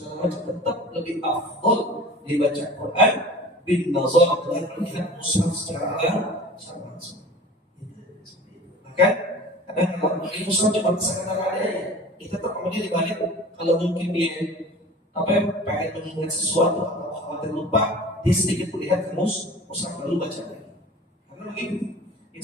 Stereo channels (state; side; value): normal; both; correlation 0.40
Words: tetap lebih afdal dibaca Quran bin nazar dengan melihat mushaf secara langsung. Maka kadang kalau di mushaf cuma sekedar ada ya, kita tetap kemudian dibalik kalau mungkin dia pengen mengingat sesuatu atau khawatir lupa, dia sedikit melihat ke mushaf lalu baca lagi. Karena begitu,